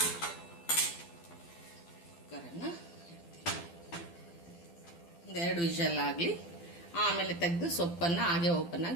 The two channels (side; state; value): right; late; 12 ms